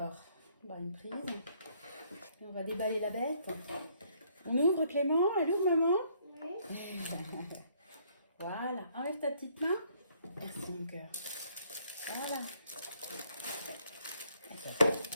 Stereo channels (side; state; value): both; inverted; correlation -0.66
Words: bah, une prise. Et on va déballer la bête. On ouvre Clément. Elle ouvre maman? Oui. Voilà. Enlève ta petite main. Merci mon cœur. Voilà.